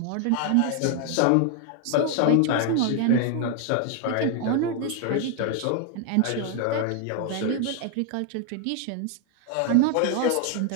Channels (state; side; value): different; both; correlation 0.00